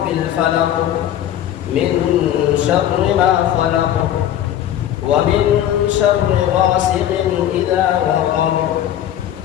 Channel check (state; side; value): quieter; right; 11.2 dB